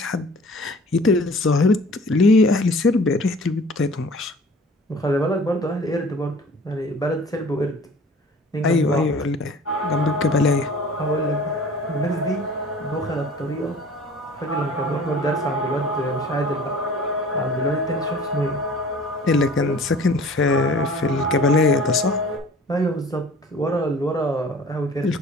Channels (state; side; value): normal; both; correlation 0.46